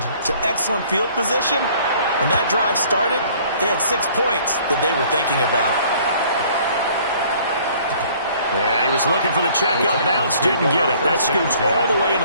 to excellent field position. When that drive started, they had 6 points that they were thinking about. Yeah, he was looking for the checkout bounce, didn't get it. That scoots all the way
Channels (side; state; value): both; inverted; correlation -0.56